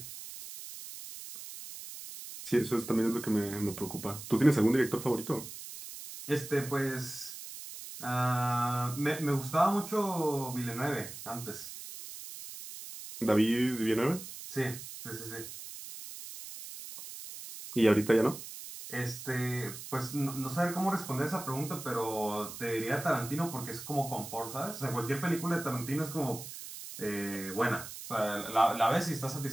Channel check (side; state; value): right; noise; hiss, 11 dB below the sound